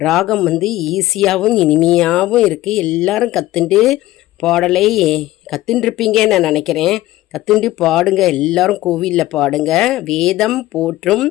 ராகம் ஈஸியாகவும் இனிமையாகவும் இருக்குது. எல்லாரும் கற்றுண்டு பாடலை கற்றுட்டுருப்பீங்கன்னு நான் நினைக்கிறேன். கற்றுண்டு பாடுங்க, எல்லாரும் கோவிலில் பாடுங்க. வேதம் போற்றும்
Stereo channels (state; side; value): quieter; right; 16.3 dB